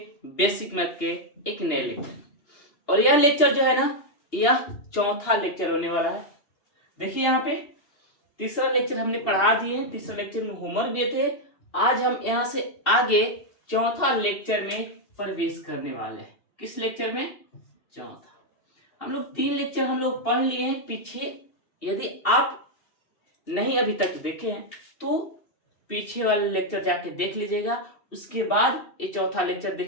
बेसिक मैथ के एक नए लेक्चर। और यह लेक्चर जो है ना, यह चौथा लेक्चर होने वाला है। देखिए यहाँ पे तीसरा लेक्चर हमने पढ़ा दिए, तीसरा लेक्चर में होमवर्क दिए थे। आज हम यहाँ से आगे चौथा लेक्चर में प्रवेश करने वाले हैं। किस लेक्चर में? चौथा। हम लोग 3 लेक्चर हम लोग पढ़ लिए हैं पीछे। यदि आप नहीं अभी तक देखे हैं तो पीछे वाले लेक्चर जाके देख लीजिएगा, उसके बाद ये चौथा लेक्चर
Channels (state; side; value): late; right; 2.8 ms